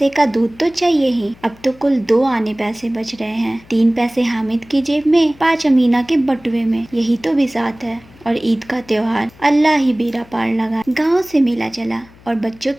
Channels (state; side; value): noise; left; hum, 25 dB below the sound